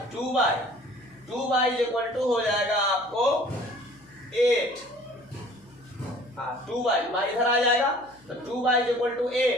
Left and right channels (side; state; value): left; noise; hum, 28 dB below the sound